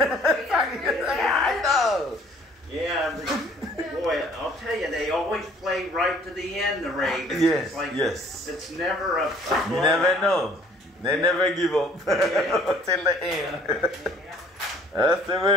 know. Yeah, but boy, I'll tell you, they always play right to the end, the Ravens. Yes, it's like, yes. It's never a You never know. They never give up Yeah. till the end. That's the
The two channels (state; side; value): normal; both; correlation 0.56